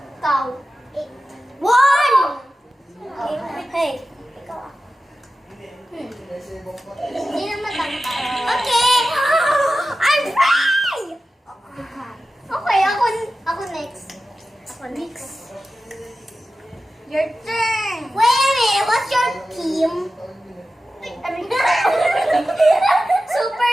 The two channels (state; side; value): normal; both; correlation 0.94